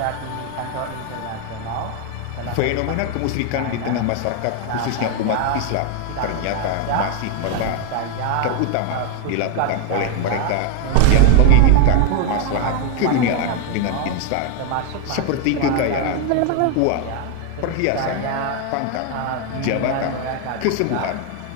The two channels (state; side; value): different; both; correlation 0.01